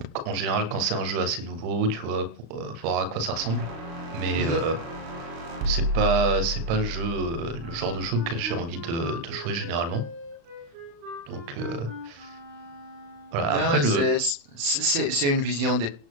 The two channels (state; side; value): late; left; 35 ms